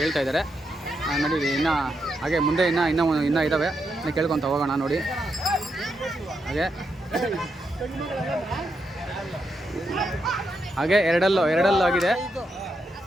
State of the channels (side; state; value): both; normal; correlation 0.83